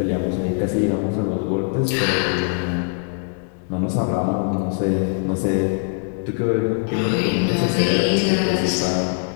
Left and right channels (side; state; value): right; silent; 57 dB below the other